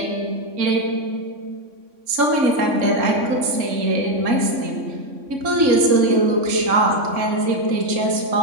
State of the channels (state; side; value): late; left; 3.6 ms